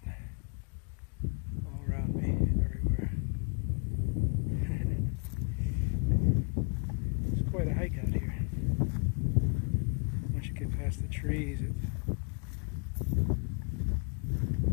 All around me, everywhere. It's quite a hike out here. Once you get past the trees, it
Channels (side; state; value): right; quieter; 36.2 dB